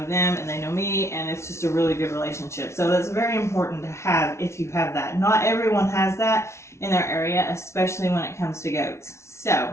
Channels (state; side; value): late; right; 0.13 ms